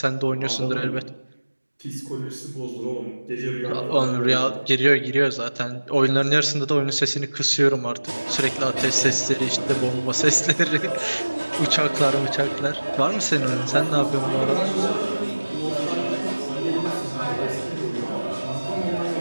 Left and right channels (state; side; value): inverted; both; correlation -1.00